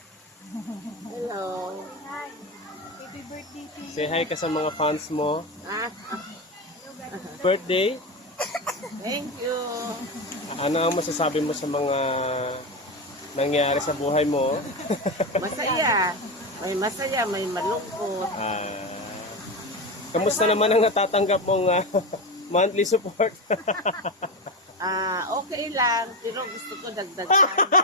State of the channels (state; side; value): normal; both; correlation 0.18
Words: Hello. Happy birthday to you. Say hi ka sa mga fans mo. Ah, Birthday. thank you. Ano ang masasabi mo sa mga nangyari sa buhay mo? Masaya. May masaya, may malungkot. Kamusta naman ang natatanggap mong monthly support? Okay lang. Pero gusto ko dagdagan.